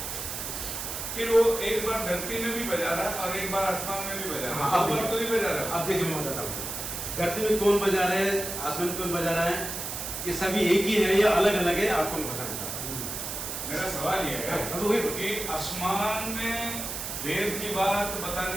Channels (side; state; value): right; noise; hiss, 5 dB below the sound